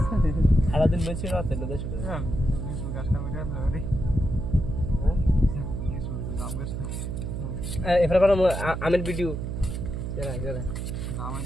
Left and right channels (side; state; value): right; noise; hum, 4 dB below the sound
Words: সারাদিন বেশি রাতে এবার আমের ভিডিও